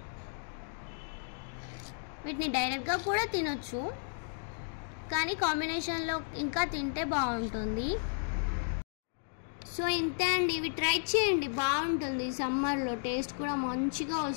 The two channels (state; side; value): silent; right; digital silence